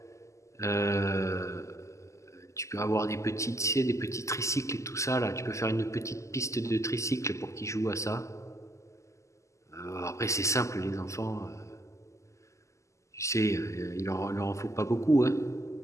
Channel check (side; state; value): right; late; 0.14 ms